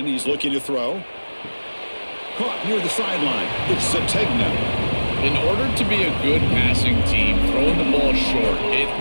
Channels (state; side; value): inverted; both; correlation -1.00